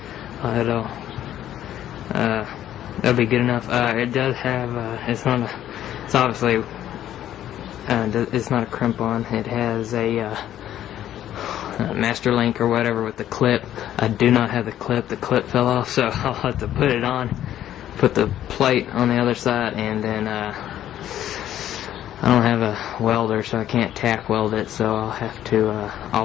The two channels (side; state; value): right; quieter; 11.8 dB